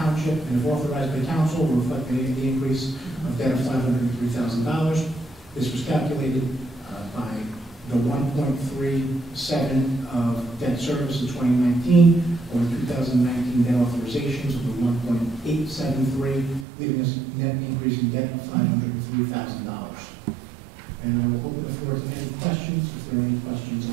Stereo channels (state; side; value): drops out; left; at 16.7 s